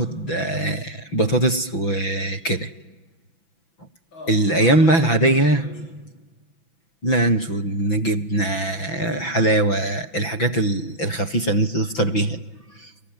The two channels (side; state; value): right; late; 6.0 ms